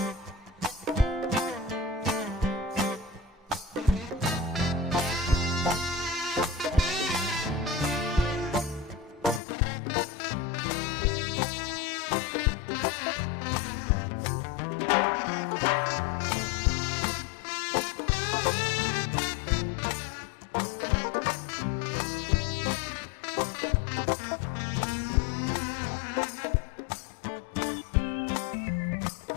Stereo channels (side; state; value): right; drops out; at 9.4 s